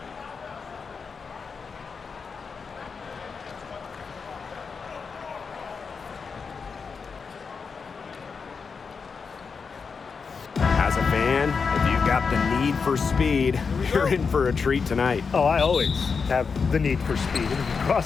As a fan, if you've got the need for speed, you're in for a treat tonight. Oh, I always have the need for speed.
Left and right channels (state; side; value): quieter; right; 5.4 dB